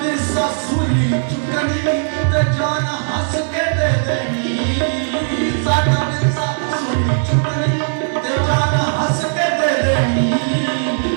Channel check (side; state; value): left; silent; digital silence